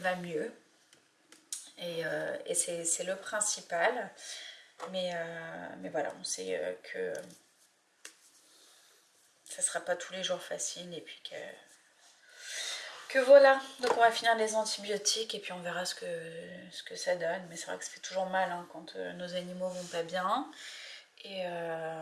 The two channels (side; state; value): both; identical; correlation 1.00